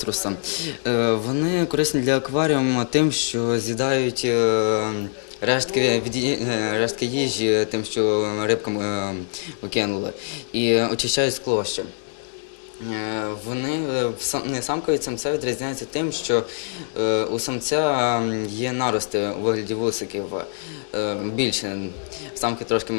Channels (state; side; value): silent; right; digital silence